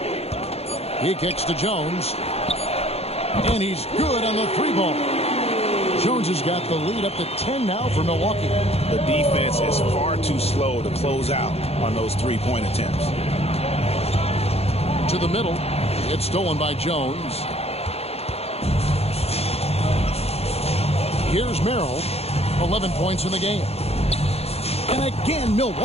He kicks to Jones. And he's good on the 3 ball. Jones has got the lead up to 10 now for Milwaukee. The defense is far too slow to close out on those 3-point attempts. To the middle. It's stolen by Jones. Here's Merrill. 11 points in the game. And again,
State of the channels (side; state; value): right; late; 0.30 ms